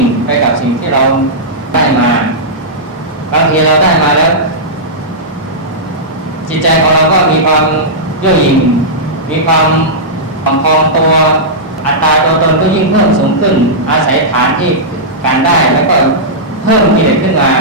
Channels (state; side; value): normal; both; correlation -0.12